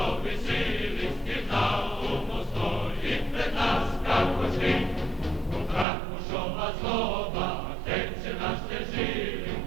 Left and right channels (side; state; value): left; drops out; at 5.9 s